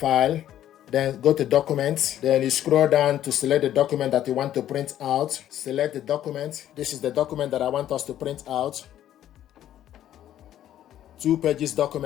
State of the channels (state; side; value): quieter; right; 11.8 dB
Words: then go to documents, then you scroll down to select the document that you want to print out. Select the document. This is the document that I want us to print out. 2 pages